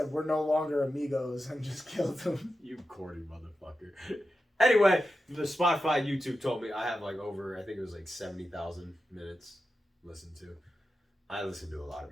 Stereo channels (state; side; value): normal; both; correlation 0.91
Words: we're no longer Amigos and just killed him. You corny motherfucker. Anyway, the Spotify YouTube told me I have like over, I think it was like 70,000 minutes listened to. I listen to a lot